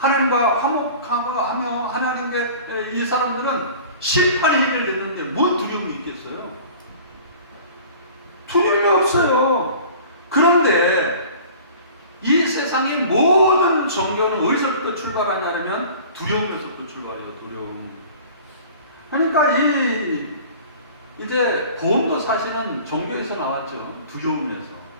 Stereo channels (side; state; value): both; inverted; correlation -0.44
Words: 화목하고 하며 하나님의 이 사람들은 심판이 해결됐는데 뭔 두려움이 있겠어요? 두려움이 없어요. 그런데 이 세상의 모든 종교는 어디서부터 출발하냐면 두려움에서부터 출발해요. 두려움. 그러니까 이제 보험도 사실은 종교에서 나왔죠. 두려움에서.